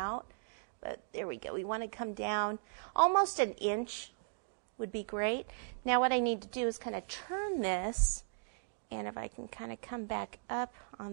But there we go. We want to come down almost an inch would be great. Now what I need to do is kind of turn this, and if I can kind of come back up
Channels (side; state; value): left; silent; digital silence